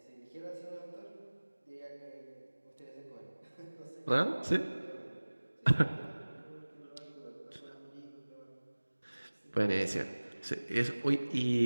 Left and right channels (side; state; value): both; inverted; correlation -1.00